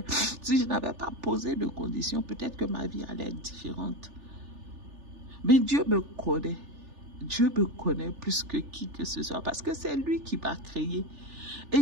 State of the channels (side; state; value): left; late; 3.4 ms